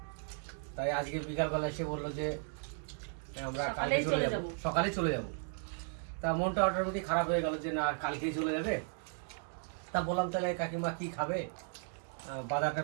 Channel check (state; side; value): silent; left; 54 dB below the other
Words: তাই আজকে বিকালবেলা এসে বললো যে আমরা কালকে চলে যাবো, সকালে চলে যাব। তা মনটা অটোমেটিক খারাপ হয়ে গেল যে না কালকেই চলে যাবে। তা বললাম তাহলে কাকিমা কি খাবে, বাজারটা